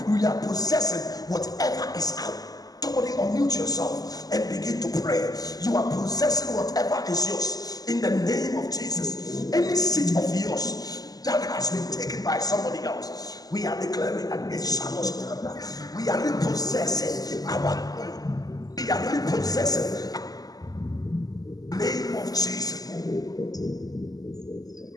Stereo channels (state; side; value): late; right; 0.18 ms